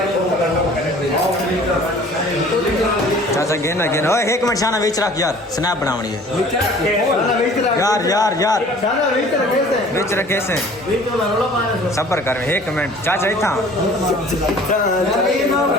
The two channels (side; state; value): both; normal; correlation 0.49